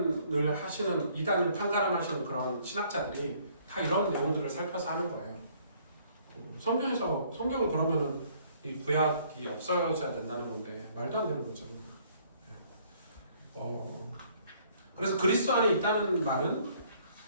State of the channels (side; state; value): both; inverted; correlation -0.62